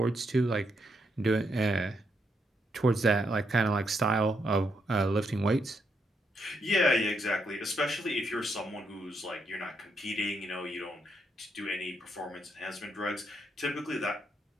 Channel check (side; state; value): both; normal; correlation 0.78